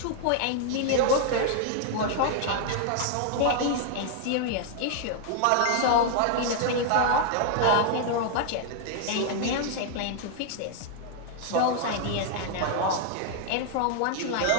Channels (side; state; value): both; different; correlation 0.00